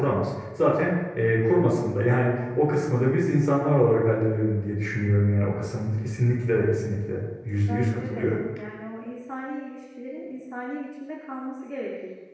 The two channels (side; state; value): both; identical; correlation 1.00